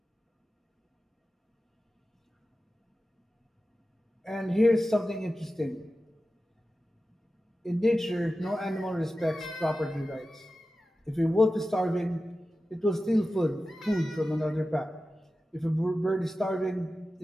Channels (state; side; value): normal; both; correlation 0.94